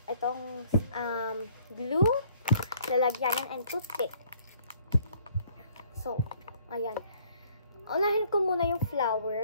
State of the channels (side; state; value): both; inverted; correlation -0.60